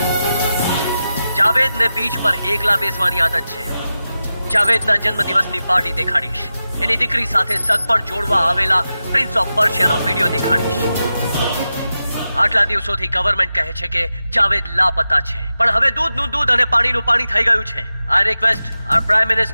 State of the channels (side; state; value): both; inverted; correlation -0.92